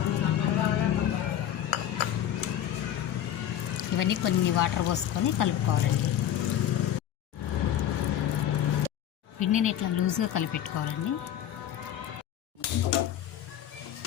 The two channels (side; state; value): right; quieter; 10.8 dB